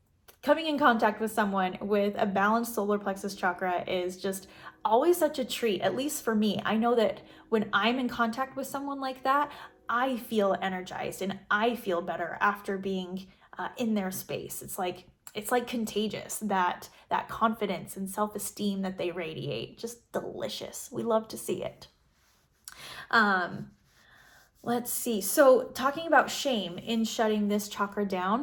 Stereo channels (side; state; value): both; identical; correlation 1.00